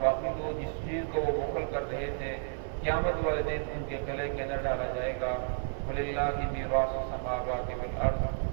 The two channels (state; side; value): silent; left; 57 dB below the other